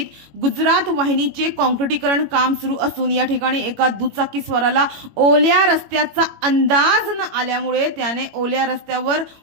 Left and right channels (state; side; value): late; left; 21 ms